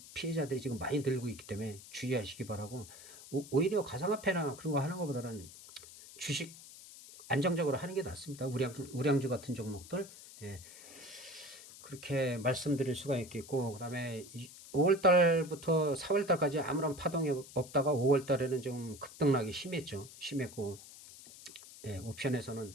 피해자들이 지금 많이 늘고 있기 때문에 주의하시기 바라고 오히려 가상화폐나 그런 거 하는 것보다는 주식 안정적으로 하는 게 낫습니다. 우량주 같은 종목들 그렇게 말씀드릴 수가 있겠고 그다음에 5월 달부터 4월 달까지 아무런 파동이 없다가 5월 달에는 좀 급등락이 심했죠. 심했고 예, 옵션에서는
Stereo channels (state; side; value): noise; left; hiss, 17 dB below the sound